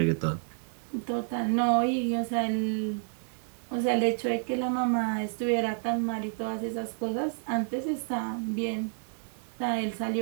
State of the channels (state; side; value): silent; left; 56 dB below the other